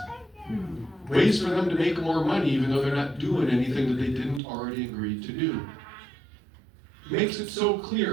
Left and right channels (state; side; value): drops out; left; at 4.4 s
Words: Ways for them to make more money even though they're not doing anything that they didn't already agree to do. Makes it so